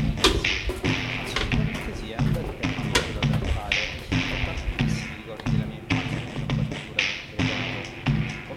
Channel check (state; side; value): identical; both; correlation 1.00